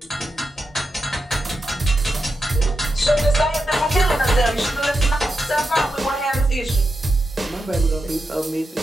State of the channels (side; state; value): both; normal; correlation 0.88